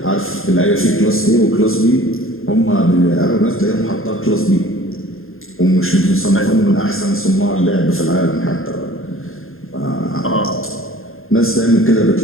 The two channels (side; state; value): right; late; 0.61 ms